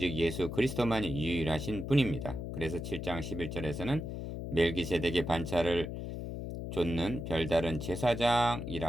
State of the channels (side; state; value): left; noise; hum, 6 dB below the sound